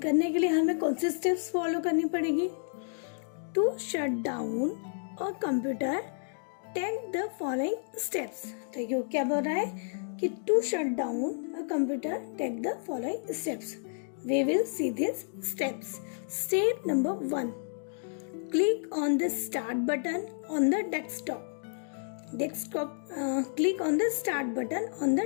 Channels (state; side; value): silent; right; digital silence